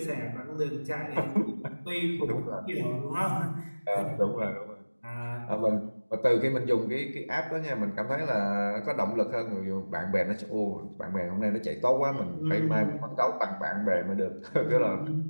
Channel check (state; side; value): inverted; both; correlation -1.00